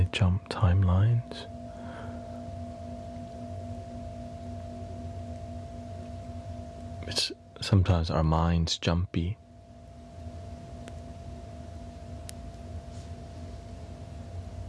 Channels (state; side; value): identical; both; correlation 1.00